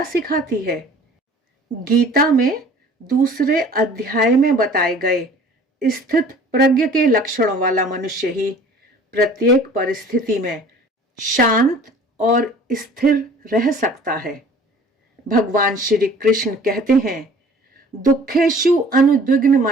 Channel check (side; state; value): both; normal; correlation 0.49